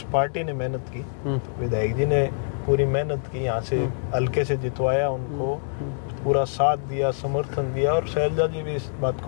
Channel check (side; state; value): right; silent; digital silence